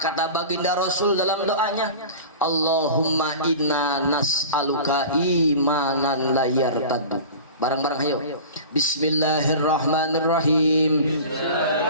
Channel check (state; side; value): inverted; both; correlation -0.36